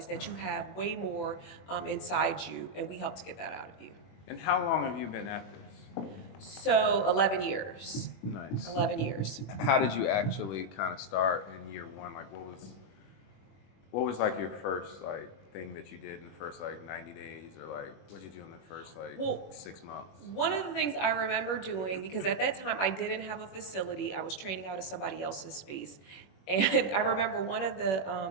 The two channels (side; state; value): right; late; 21 ms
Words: that you have way more inside you, and we help to get that out of you. And how long have you been at this? So 11 years. Nice. 11 years. How did you actually kind of start in year one? Like, what was like your first like thing that you did in the first like 90 days, or like what did you do in the first like 6 months? One of the things I remember doing, because at that time I didn't have a facility, I was training out of somebody else's space. And I remember one of